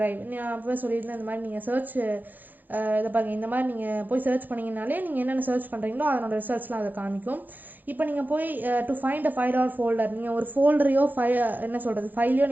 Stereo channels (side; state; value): left; late; 0.085 ms